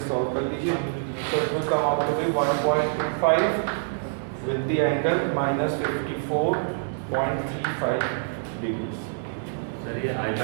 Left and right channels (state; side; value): silent; left; digital silence